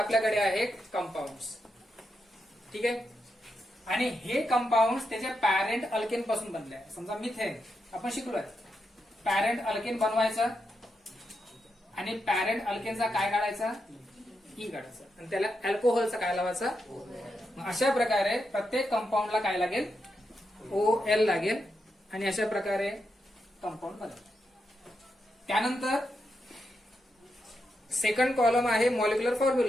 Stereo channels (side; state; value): both; normal; correlation 0.85